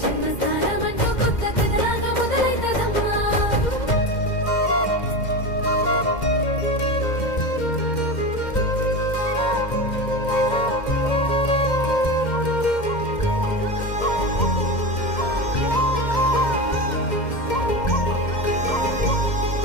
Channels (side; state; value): right; late; 2.1 ms